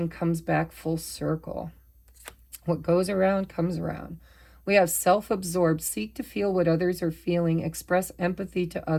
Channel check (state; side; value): identical; both; correlation 1.00